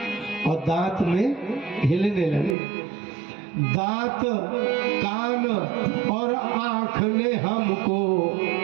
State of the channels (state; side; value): drops out; left; at 2.6 s